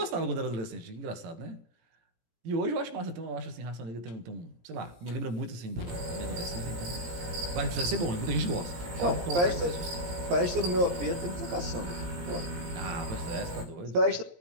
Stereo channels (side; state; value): left; late; 17 ms